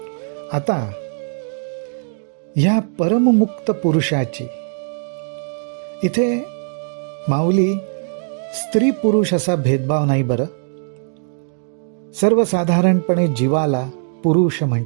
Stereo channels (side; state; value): left; silent; digital silence